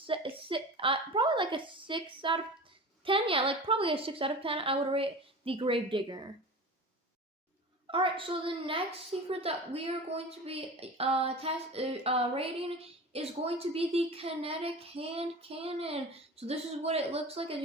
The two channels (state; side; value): normal; both; correlation 0.34